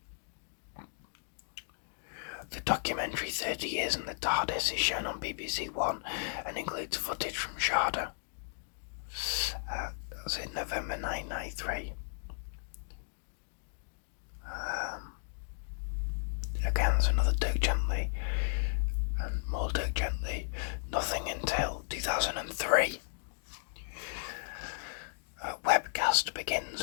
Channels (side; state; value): right; silent; digital silence